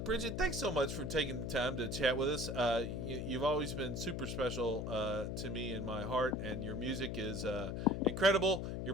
Bridget, thanks so much for taking the time to chat with us. You've always been super special to me in my heart, and your music is incredible.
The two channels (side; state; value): left; noise; hum, 3 dB below the sound